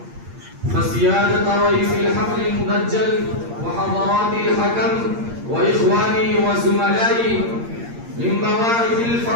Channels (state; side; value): late; left; 8.6 ms